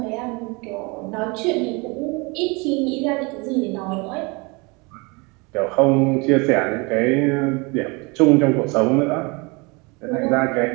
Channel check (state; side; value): quieter; left; 28.2 dB